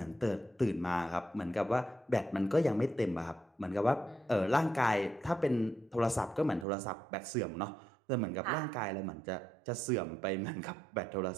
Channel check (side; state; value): left; drops out; at 6.7 s